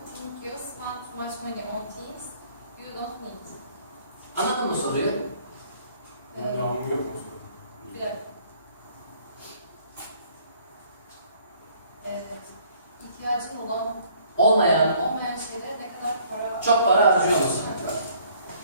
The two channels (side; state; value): both; inverted; correlation -0.60